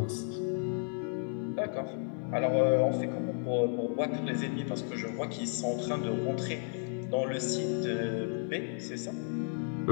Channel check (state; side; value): silent; right; 56 dB below the other